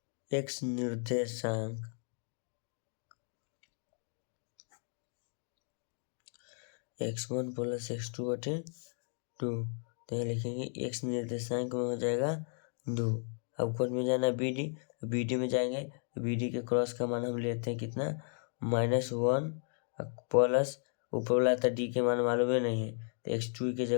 x निर्देशांक x1 प्लस x2 बटे 2। तो यहाँ लिखेंगे x निर्देशांक में हो जाएगा 2। अब कौन में जाना, BD में जाएंगे। BD के क्रॉस का मान हम लेते हैं कितना, -1 प्लस ऊपर वाला था d के मान मालूम है नहीं है, तो x2 की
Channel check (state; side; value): silent; right; 55 dB below the other